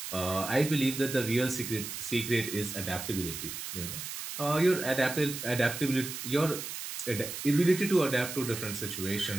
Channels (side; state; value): right; noise; hiss, 7 dB below the sound